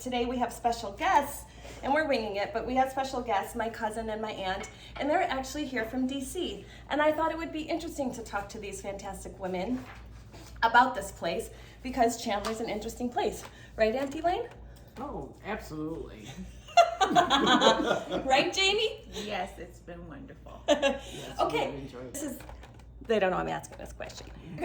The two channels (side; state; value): both; identical; correlation 1.00